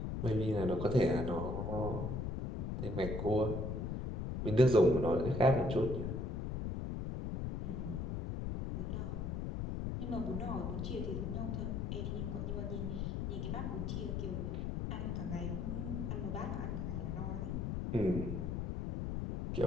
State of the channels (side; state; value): left; noise; rumble, 2 dB below the sound